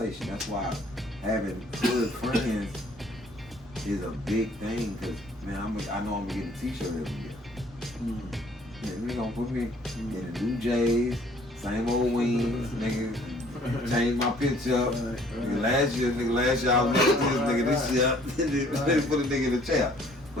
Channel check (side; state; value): both; normal; correlation 0.58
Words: That's why having good friends is a big thing, because man, I know I'm gonna get a t-shirt every year. Yeah, we gonna put me in the new J's, same old wings, nigga. Change my picture up. Nigga, last year I was next to this year. Put a nigga in the chair.